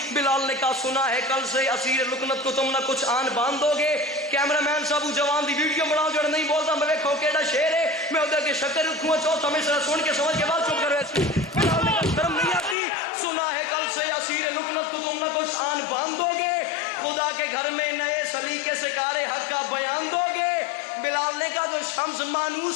بلال نے کہا سنا ہے کل سے اسیر لکنت کو تم نہ کچھ آن باندھ دو گے۔ کیمرہ مین صاحب جوان دی ویڈیو بناؤ جڑ نہیں بولتا میں ویکھو کیڑا شعر ہے، میں ادھر کے شکر رکھوں چوتھا مصرع سن کے سمجھ کے بعد چپ کر ویسے بلال نے کہا شرم نہیں آتی؟ سنا ہے کل سے اسیر لکنت کو تم نہ کچھ آن باندھ دو گے، خدا کے گھر میں نئے سلیقے سے کار حق کا بیان دو گے۔ بلال نے کہا جو شمس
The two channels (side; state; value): right; drops out; at 12.8 s